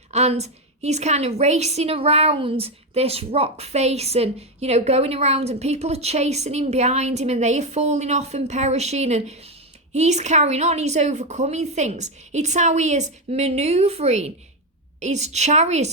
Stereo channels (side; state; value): both; normal; correlation 0.08